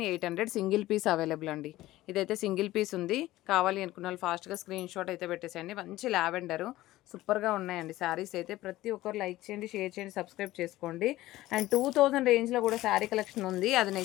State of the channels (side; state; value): right; quieter; 16.4 dB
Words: సింగిల్ పీస్ అవైలబుల్ అండి. ఇదైతే సింగిల్ పీస్ ఉంది. కావాలి అనుకున్న వాళ్ళు ఫాస్ట్గా స్క్రీన్ షాట్ అయితే పెట్టేసేయండి. మంచి లావెండరు సూపర్గా ఉన్నాయండి శారీస్ అయితే. ప్రతి ఒక్కరు లైక్ చేయండి, షేర్ చేయండి, సబ్స్క్రైబ్ చేసుకోండి. అండ్ 2000 రేంజ్లో కూడా శారీ కలెక్షన్ ఉంది, అది